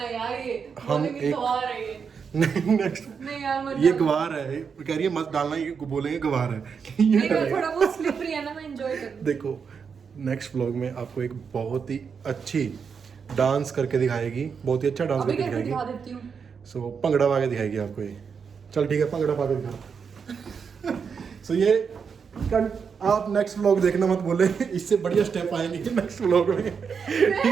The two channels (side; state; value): left; quieter; 6.2 dB